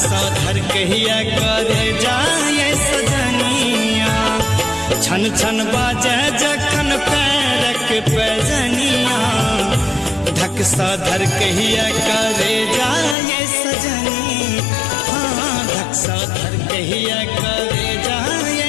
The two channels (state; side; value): drops out; right; at 13.2 s